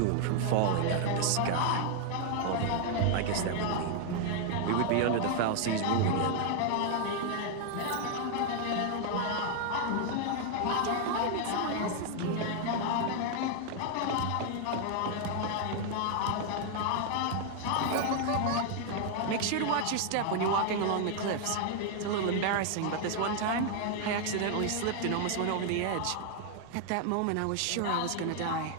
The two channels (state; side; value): different; both; correlation 0.00